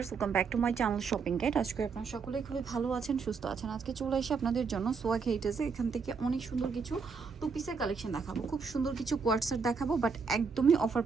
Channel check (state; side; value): quieter; left; 5.2 dB